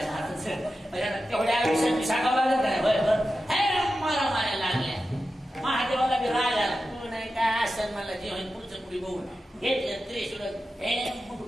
तेवढ्या आयुष्यात सांगावं लागत नाही बरोबर हे मारा माऱ्या लागल्या महादेवाला बी राग आला तू नाही काय असं मला जे होईल पुढचं पुढे बघून घेतलं त्रिशूळ हे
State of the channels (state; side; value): normal; both; correlation 0.92